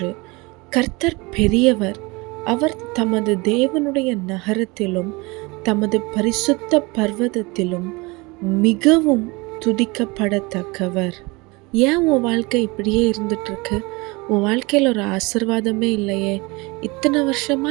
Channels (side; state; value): left; quieter; 25.3 dB